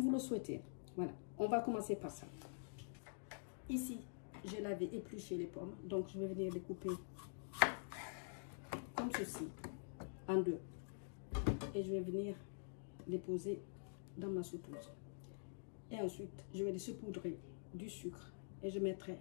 le souhaitez. Voilà, on va commencer par ça. Ici, je l'avais épluché les pommes, donc je vais venir les couper comme ceci, en deux. Et je vais venir les poser dans ma sauteuse. Et ensuite, je vais les saupoudrer du sucre et je mettrai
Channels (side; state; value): right; silent; digital silence